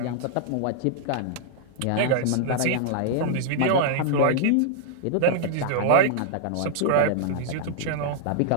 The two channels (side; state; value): both; different; correlation -0.01